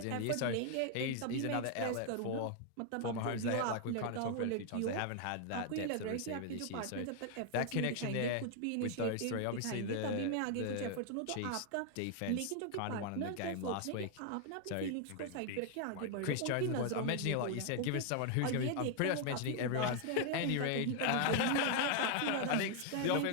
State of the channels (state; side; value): different; both; correlation 0.00